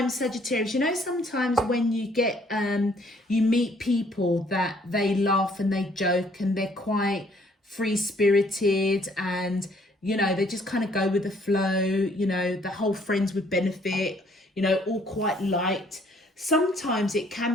Sagittarius, you know sometimes when you get, you meet people that they laugh and they joke and they're quite free-spirited and, you know, they just kind of go with the flow, you know, the whole friends with benefit, you know, all quite light. sometimes it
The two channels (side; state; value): both; normal; correlation 0.63